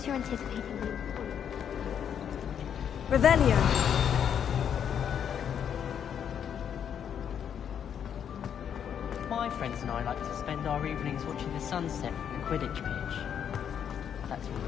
you're anticipating them. Revelio. My friends and I like to spend our evenings watching the sunset from the Quidditch pitch. That's all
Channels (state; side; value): quieter; right; 8.5 dB